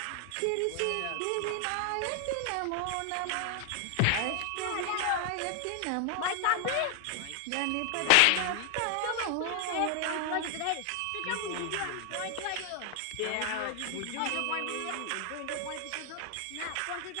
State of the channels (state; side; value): different; both; correlation 0.00